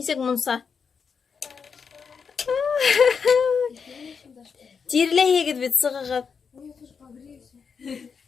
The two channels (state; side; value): quieter; right; 6.0 dB